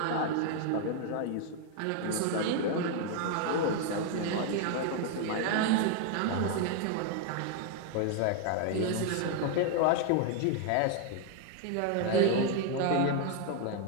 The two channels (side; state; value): both; different; correlation 0.00